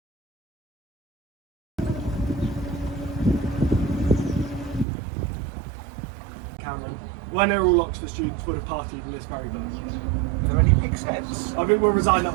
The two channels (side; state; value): left; drops out; at 4.9 s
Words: Cameron. When they're all Oxford students would have partied in this very boat. Are there any pig's heads? I think we'll resign that